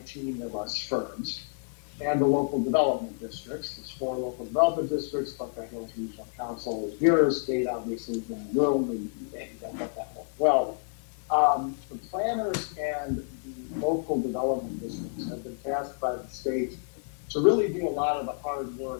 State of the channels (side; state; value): right; silent; 58 dB below the other